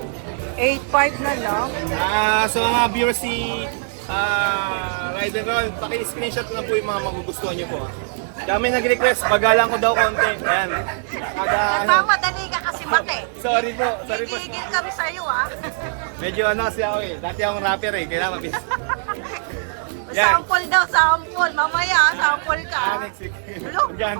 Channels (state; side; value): silent; left; digital silence